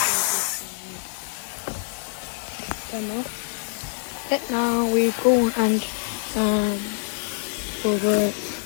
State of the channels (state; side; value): silent; right; 62 dB below the other